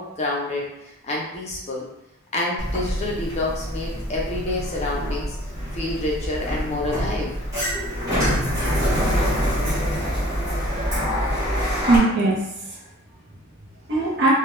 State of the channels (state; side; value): normal; both; correlation 0.50